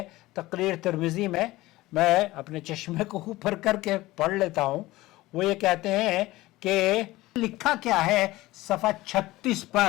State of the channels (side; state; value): right; quieter; 18.4 dB